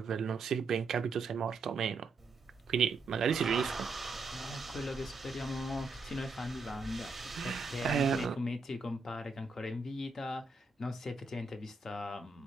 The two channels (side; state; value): left; quieter; 3.8 dB